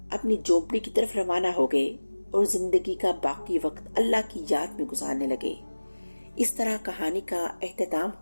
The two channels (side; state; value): both; inverted; correlation -1.00